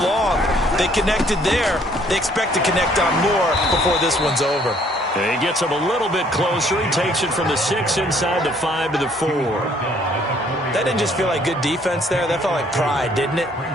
They connected there. They expect to connect on more before this one's over. And he gets him a little bit closer. He takes it from the 6 inside the 5 to the 4. That didn't just feel like good defense there. That felt like pride, didn't it?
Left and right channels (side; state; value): both; normal; correlation 0.62